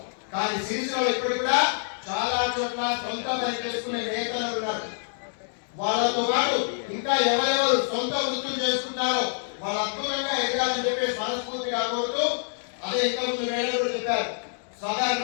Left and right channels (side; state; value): right; silent; digital silence